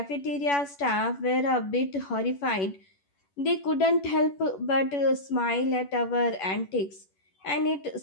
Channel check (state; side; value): late; right; 11 ms